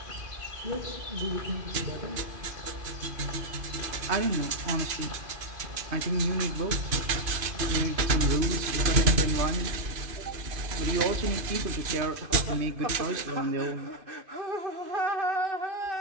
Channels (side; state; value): left; late; 2.5 ms